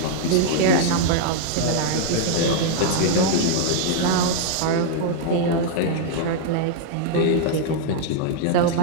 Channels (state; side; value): different; both; correlation -0.01